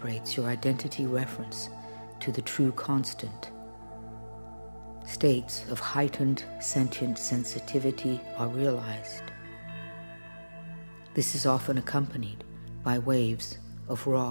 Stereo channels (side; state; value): both; inverted; correlation -1.00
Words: your identity reference to the true constant. States of heightened sentient sensitivity are realized. This is often accompanied by waves of